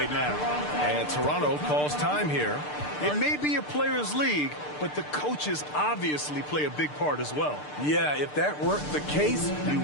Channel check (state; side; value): late; right; 6.7 ms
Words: now. And Toronto calls time here. It may be a players' league, but the coaches obviously play a big part as well. Yeah, if that weren't the case, you